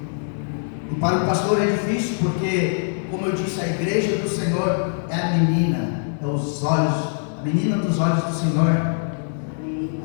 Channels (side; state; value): right; silent; 64 dB below the other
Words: E para o pastor é difícil porque, como eu disse, a igreja do Senhor é a menina, é os olhos, a menina dos olhos do Senhor.